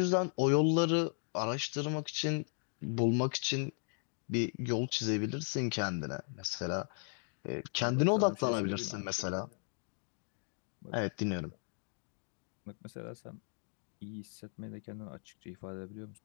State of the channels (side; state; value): right; silent; 53 dB below the other